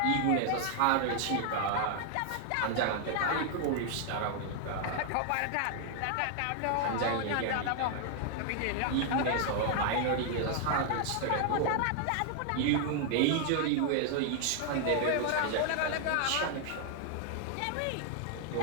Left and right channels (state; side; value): different; both; correlation 0.00